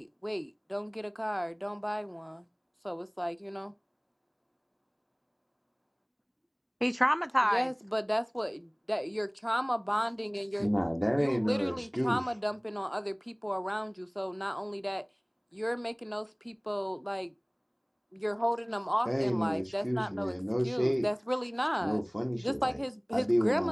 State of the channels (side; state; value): both; identical; correlation 1.00